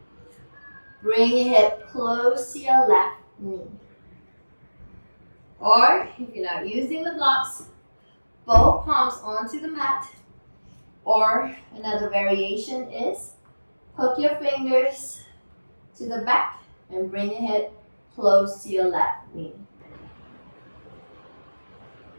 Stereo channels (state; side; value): inverted; both; correlation -1.00